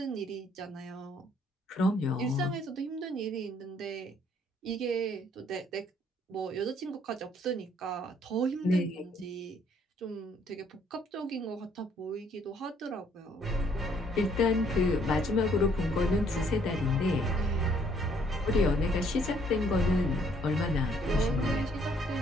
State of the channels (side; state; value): both; normal; correlation 0.64